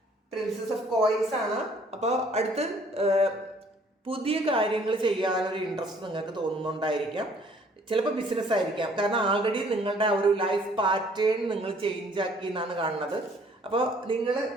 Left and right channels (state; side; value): normal; both; correlation 0.59